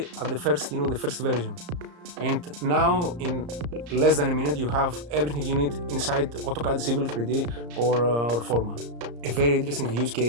at the first version. And now, in less than a minute, you have everything you need inside AutoCAD Civil 3D or Forma. A very interesting use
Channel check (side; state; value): left; late; 34 ms